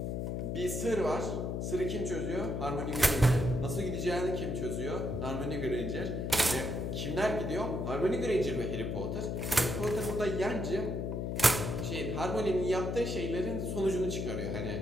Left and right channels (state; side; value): noise; left; hum, 2 dB below the sound